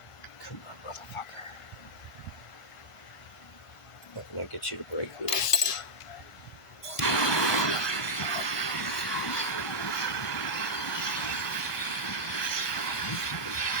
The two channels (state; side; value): late; right; 1.5 ms